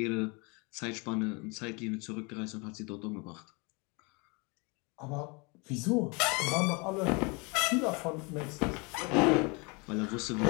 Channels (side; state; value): right; quieter; 29.9 dB